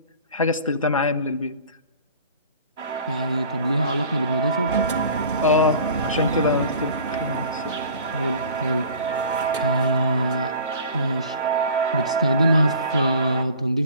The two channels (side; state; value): both; inverted; correlation -0.45